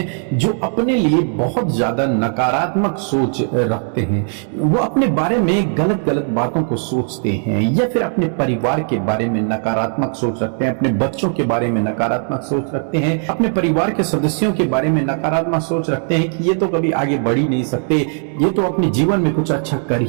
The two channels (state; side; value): silent; left; 56 dB below the other